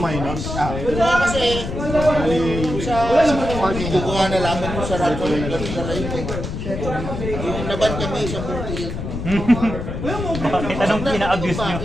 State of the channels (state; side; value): noise; left; rumble, 5 dB below the sound